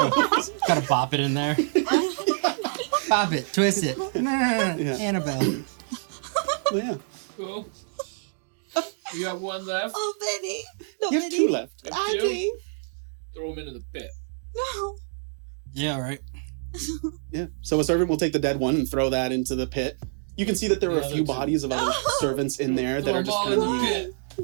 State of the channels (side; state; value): left; silent; digital silence